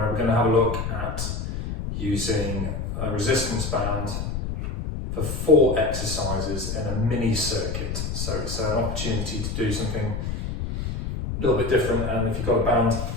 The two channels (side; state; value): left; noise; rumble, 4 dB below the sound